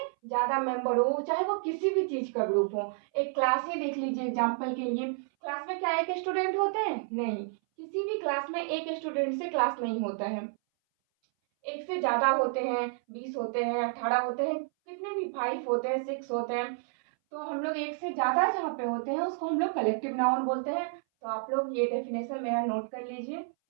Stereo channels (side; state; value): left; silent; 58 dB below the other